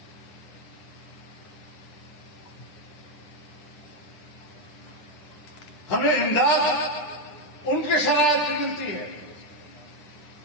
ہمیں امداد ان کے شرائط پر ملتی ہے،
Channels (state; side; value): late; right; 10 ms